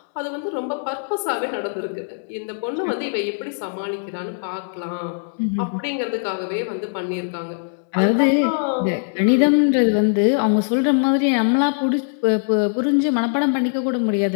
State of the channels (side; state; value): right; silent; digital silence